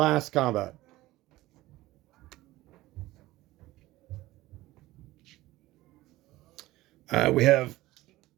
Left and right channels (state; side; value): quieter; left; 17.7 dB